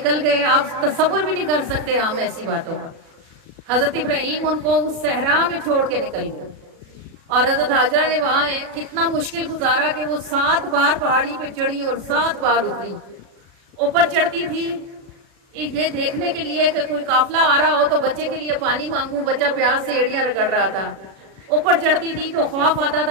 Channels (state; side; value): late; left; 37 ms